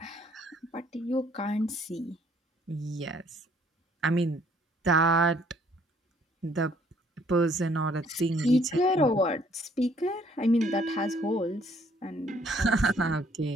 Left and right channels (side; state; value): both; normal; correlation 0.63